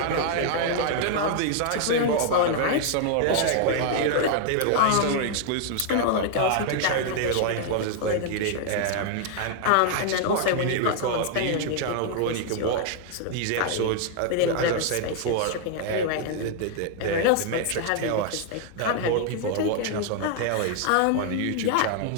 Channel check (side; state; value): both; different; correlation 0.00